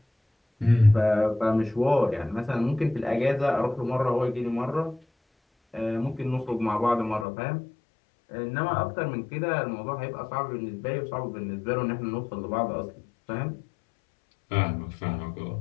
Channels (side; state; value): right; drops out; at 7.2 s